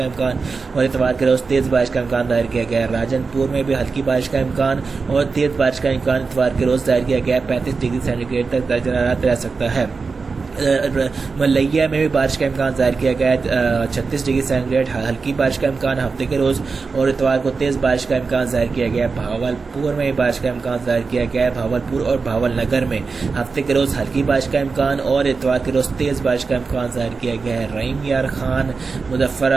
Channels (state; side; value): quieter; left; 4.6 dB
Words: امکان اور اتوار کے روز تیز بارش کا امکان ظاہر کیا گیا ہے۔ راجن پور میں بھی ہلکی بارش کا امکان اور تیز بارش کا امکان اتوار کے روز ظاہر کیا گیا 35 ڈگری سینٹی گریڈ تک درجہ حرارت رہ سکتا ہے۔ ملیا میں بھی بارش کا امکان ظاہر کیا گیا ہے 36 ڈگری سینٹی گریڈ ہلکی بارش کا امکان ہفتے کے روز اور اتوار کو تیز بارش کا امکان ظاہر کیا گیا ہے۔ بھاولپور میں بھی بارش کا امکان ظاہر کیا گیا ہے بھاولپور اور بھاول نگر میں ہفتے کے روز ہلکی بارش کا امکان اور اتوار کے روز تیز بارش کا امکان ظاہر کیا گیا ہے۔ رحیم یار خان، مظفر